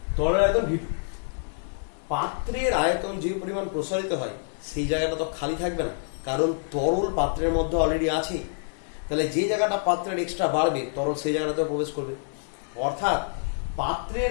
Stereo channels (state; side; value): silent; right; 59 dB below the other